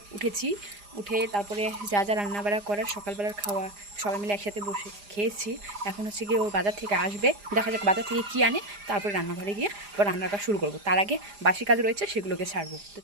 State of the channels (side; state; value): left; late; 4.9 ms